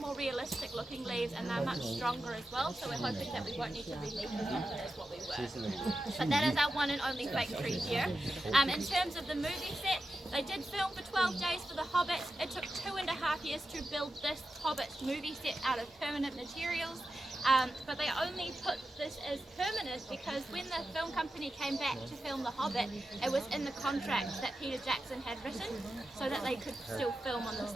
realistic looking leaves, and they're much stronger as well, so we're hoping that we won't need to re-leaf them as what we were. But that is our one and only fake tree here. In terms of the movie set, they did film for 12 days for The Hobbit. It took 2.5 years to build this Hobbit movie set out of permanent materials. But they only put this as permanent because when the film company came back to film The Hobbit, it was in the contract that Peter Jackson had written so that they could still film on the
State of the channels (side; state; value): both; normal; correlation 0.90